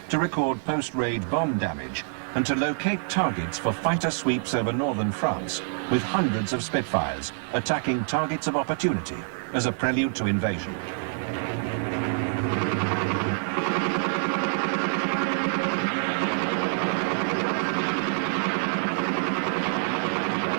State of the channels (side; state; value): left; silent; 61 dB below the other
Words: to record post-raid bomb damage and to locate targets for fighter sweeps over northern France, with hundreds of Spitfires attacking targets of opportunity as a prelude to invasion.